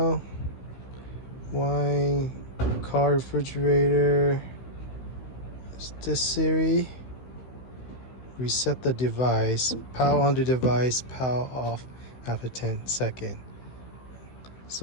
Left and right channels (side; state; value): right; late; 16 ms